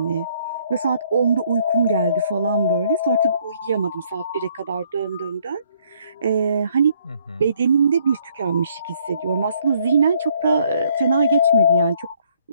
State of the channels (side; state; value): both; inverted; correlation -0.65